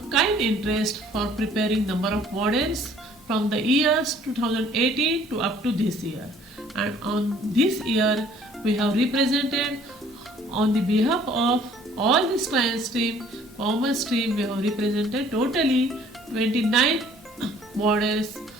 kind interest for preparing number of models from the years 2018 to up to this year. And on this year, we have represented on the behalf of all the science stream, commerce stream, we have represented totally 29 models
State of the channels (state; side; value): normal; both; correlation 0.56